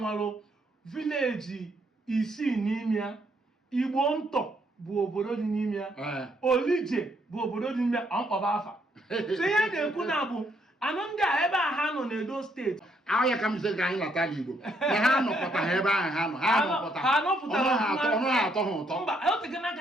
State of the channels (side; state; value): both; normal; correlation 0.72